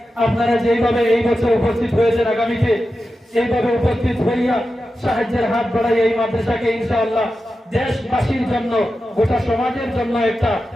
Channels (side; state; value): both; normal; correlation 0.91